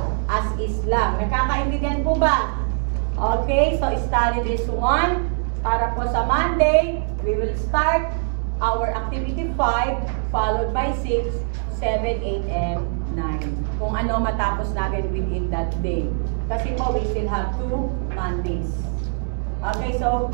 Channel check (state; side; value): silent; left; digital silence